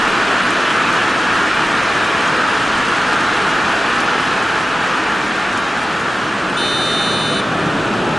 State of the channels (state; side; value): normal; both; correlation 0.95